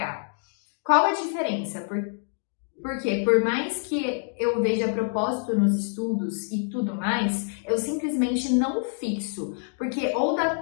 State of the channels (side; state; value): right; silent; 61 dB below the other